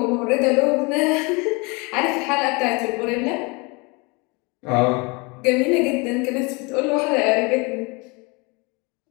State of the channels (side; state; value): right; quieter; 28.6 dB